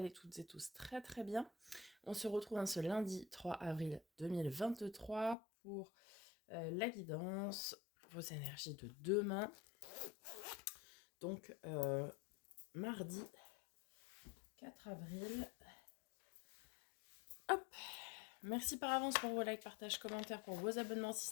toutes et tous très très bien. On se retrouve ce lundi 3 avril 2023 pour la guidance, vos énergies de demain. Donc mardi 4 avril. Hop, merci par avance pour vos likes, partages, commentaires, pour vos abonnements si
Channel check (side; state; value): right; drops out; at 5.4 s